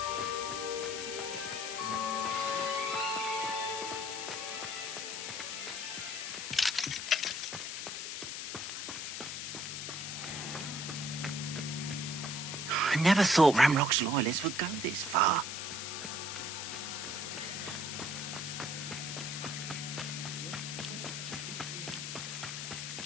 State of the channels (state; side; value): noise; left; hiss, 5 dB below the sound